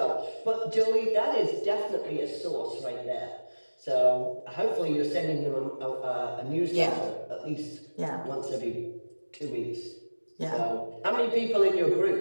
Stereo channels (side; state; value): both; inverted; correlation -1.00